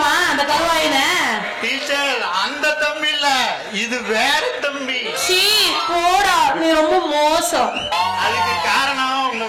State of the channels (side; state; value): both; identical; correlation 1.00